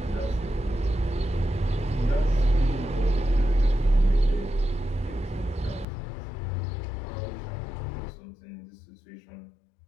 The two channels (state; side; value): drops out; right; at 5.9 s